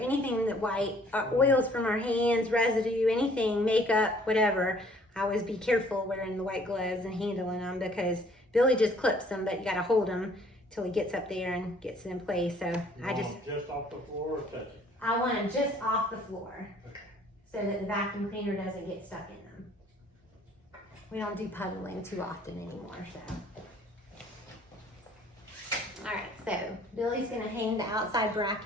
that white, oils from our hands, residue, anything, makeup, whatever, I always be careful wearing the white gloves and handling them because Billy just clips them, but you gotta hold them till he gets up there and gets it in place. So You want them just off the floor or touch it? I want them just off the floor. Okay. So that the vacuum cleaner doesn't get stuck in them. We don't do puddling too often anymore, so. All right, so Billy's gonna hang the outside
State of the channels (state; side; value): normal; both; correlation 0.58